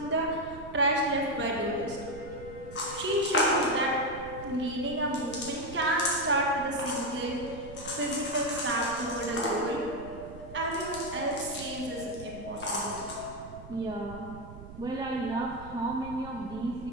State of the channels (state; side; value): noise; right; rumble, 14 dB below the sound